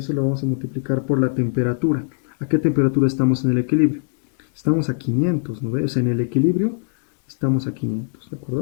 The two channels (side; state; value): right; silent; digital silence